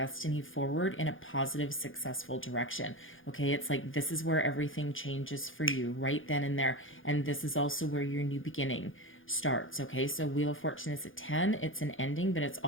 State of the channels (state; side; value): late; right; 0.58 ms